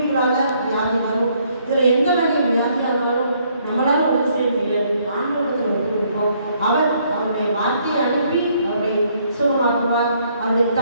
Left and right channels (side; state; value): both; inverted; correlation -0.68